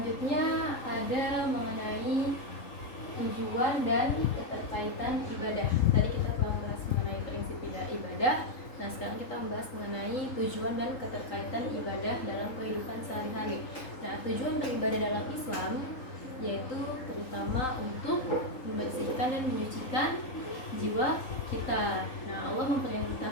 ada mengenai tujuan dan keterkaitan ibadah. Tadi kita telah membahas mengenai prinsip ibadah. Nah, sekarang kita membahas mengenai tujuan dan keterkaitan ibadah dalam kehidupan sehari-hari. Nah, tujuan beribadah dalam Islam yaitu terutama untuk membersihkan dan menyucikan jiwa kita. Nah, Allah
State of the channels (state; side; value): late; right; 3.8 ms